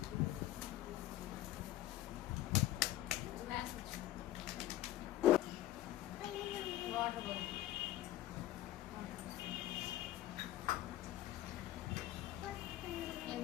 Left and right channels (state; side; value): quieter; right; 14.6 dB